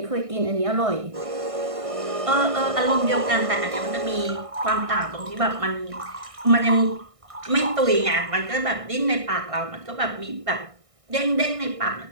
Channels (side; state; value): left; late; 1.6 ms